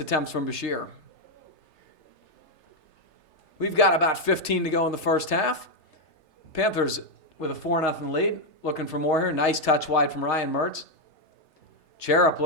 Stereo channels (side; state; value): right; late; 3.3 ms